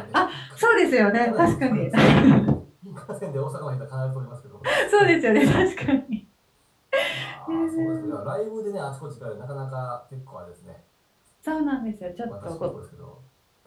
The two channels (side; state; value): both; identical; correlation 1.00